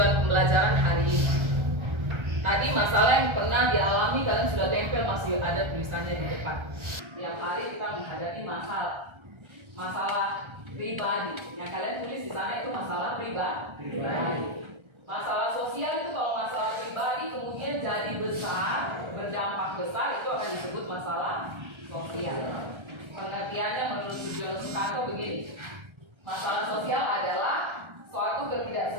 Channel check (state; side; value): late; left; 1.3 ms